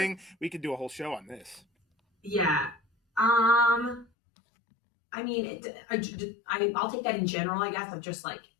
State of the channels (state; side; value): drops out; right; at 4.0 s